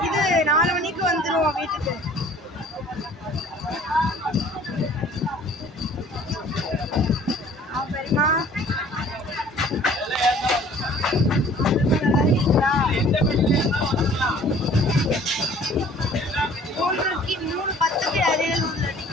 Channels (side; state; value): both; normal; correlation 0.52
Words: இது 4 மணிக்கு வந்துருவோம் வீட்டுக்கு. பெரியமா மூணு 10க்கு அரியலூர்ல